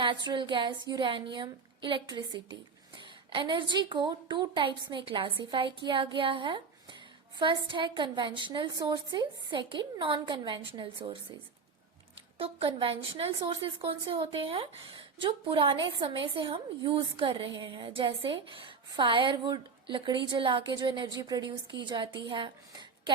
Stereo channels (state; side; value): quieter; left; 5.0 dB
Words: gas, uranium, electricity. Energy को 2 टाइप्स में क्लासिफाई किया गया है। फर्स्ट है conventional sources, second non conventional sources. तो कन्वेंशनल सोर्सेज कौन से होते हैं? जो पुराने समय से हम यूज कर रहे हैं, जैसे फायरवुड, लकड़ी जला के जो एनर्जी प्रोड्यूस की जाती है,